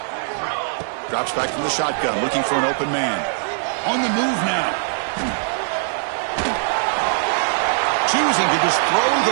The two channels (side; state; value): left; silent; digital silence